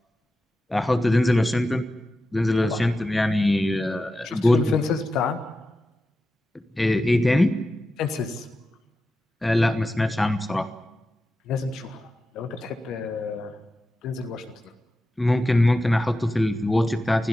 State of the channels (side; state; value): both; normal; correlation 0.92